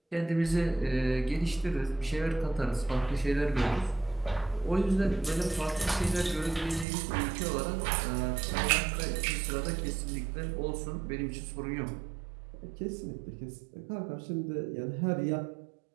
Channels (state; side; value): drops out; left; at 6.9 s